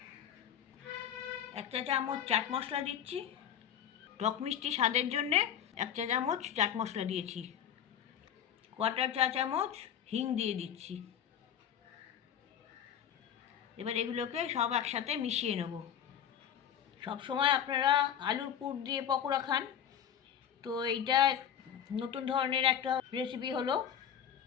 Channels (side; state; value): right; quieter; 9.2 dB